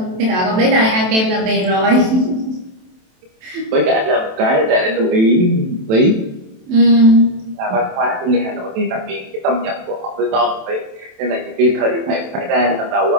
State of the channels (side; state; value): left; late; 27 ms